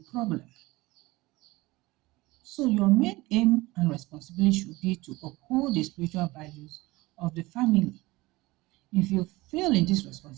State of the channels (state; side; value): quieter; left; 20.7 dB